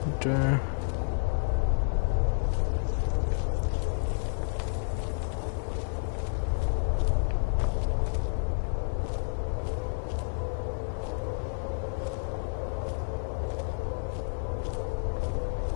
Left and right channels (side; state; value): right; silent; 58 dB below the other